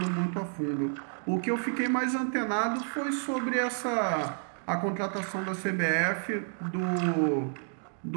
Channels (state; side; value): silent; left; 58 dB below the other